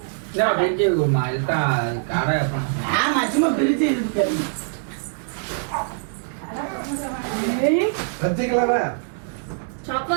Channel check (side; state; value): left; silent; digital silence